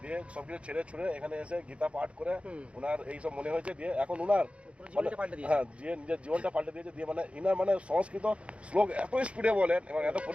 দিয়ে সবকিছু ছেড়ে ছুড়ে এখানে এসে গীতা পাঠ করে ওনার এইসব মনে হয়েছে। দিয়ে এখন ওনার হ্যাঁ দিয়ে নিজের জীবনটা পাল্টে দিয়েছে। দিয়ে মানে ইনার মানে সংস্কৃত শ্লোক এত স্পিডে বলেন এবং এত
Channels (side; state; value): left; late; 0.061 ms